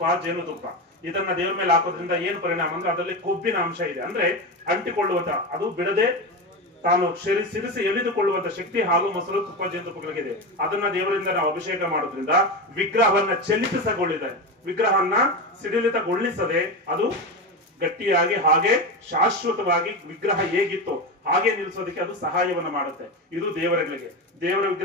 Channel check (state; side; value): normal; both; correlation 0.19